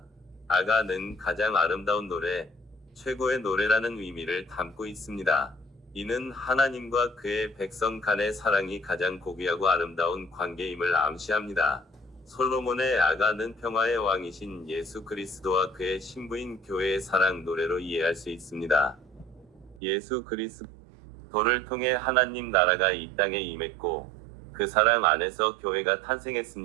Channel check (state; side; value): drops out; left; at 19.8 s